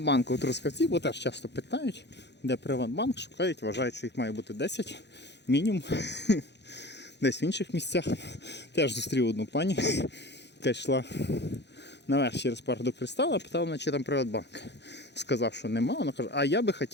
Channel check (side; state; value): right; late; 0.50 ms